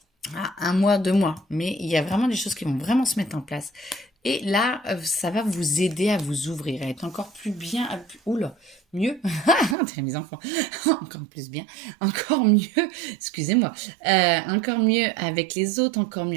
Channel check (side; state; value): left; drops out; at 9.8 s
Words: à 1 mois, 2 mois. Mais il y a vraiment des choses qui vont vraiment se mettre en place. Et là, ça va vous aider à vous ouvrir, à être encore plus bien, oula, mieux, mes enfants, encore plus bien, encore mieux, excusez-moi, encore mieux avec les autres, encore